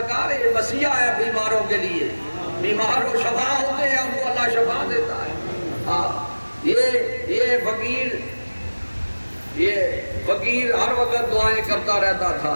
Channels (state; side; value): inverted; both; correlation -1.00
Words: یہ وصیہ ہے بیماروں کے لیے، بیمار کو شفا ہوتے ہیں ان کو اللہ شفا دیتا ہے، یہ فقیر ہر وقت دعائیں کرتا رہتا تھا،